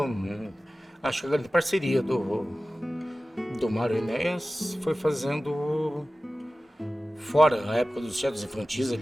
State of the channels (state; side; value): normal; both; correlation 0.96